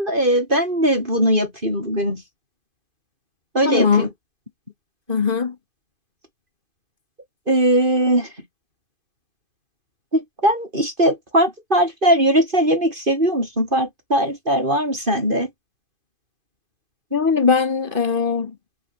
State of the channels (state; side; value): late; left; 2.5 ms